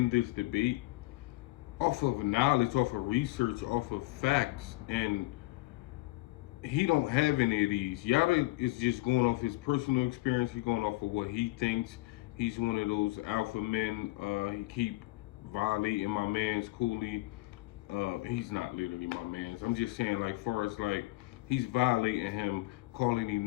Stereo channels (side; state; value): right; quieter; 20.8 dB